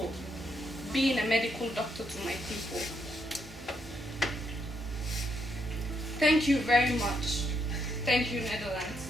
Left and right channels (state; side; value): normal; both; correlation 0.76